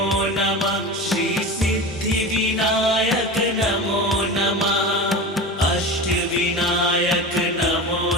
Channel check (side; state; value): both; normal; correlation 0.29